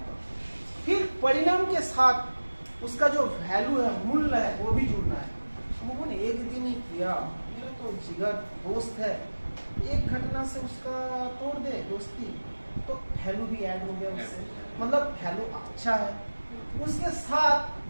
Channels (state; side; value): inverted; both; correlation -1.00